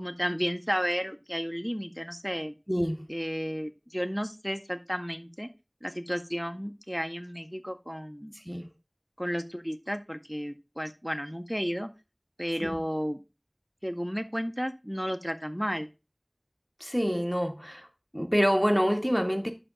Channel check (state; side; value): identical; both; correlation 1.00